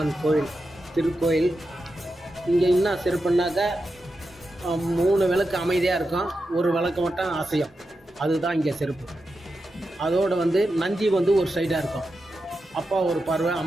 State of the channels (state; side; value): normal; both; correlation 0.89